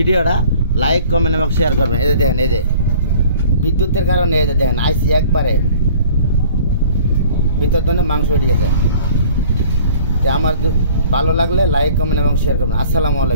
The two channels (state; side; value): inverted; both; correlation -0.50